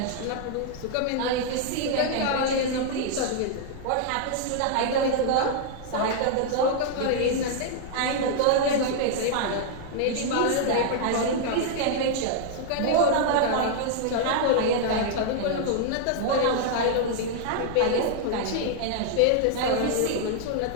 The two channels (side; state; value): both; different; correlation -0.01